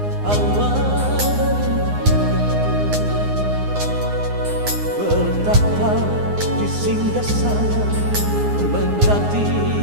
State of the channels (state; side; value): late; left; 9.7 ms